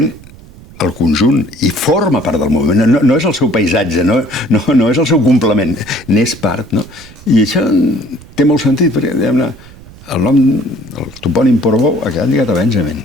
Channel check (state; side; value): noise; right; rumble, 21 dB below the sound